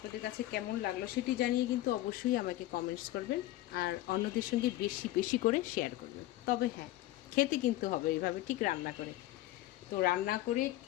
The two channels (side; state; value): right; quieter; 15.8 dB